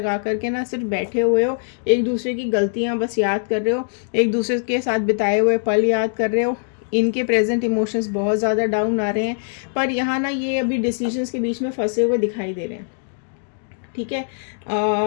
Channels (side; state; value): right; silent; digital silence